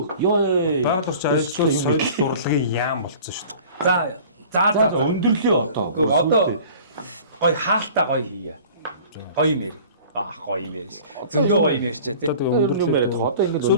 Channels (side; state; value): both; inverted; correlation -0.45